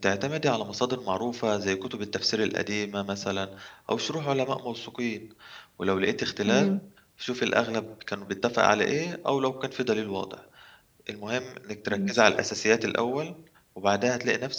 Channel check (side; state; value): both; identical; correlation 1.00